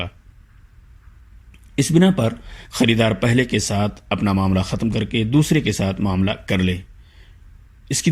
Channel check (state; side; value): identical; both; correlation 1.00